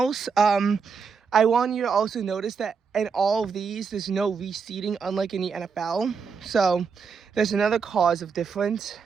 I want you to also notice that in all of these, there's no reseeding, unlike in the NFL. So there's another cause of difference,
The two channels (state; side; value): quieter; left; 5.8 dB